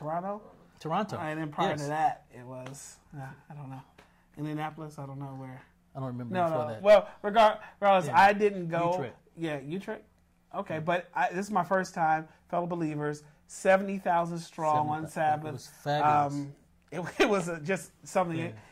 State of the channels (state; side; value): identical; both; correlation 1.00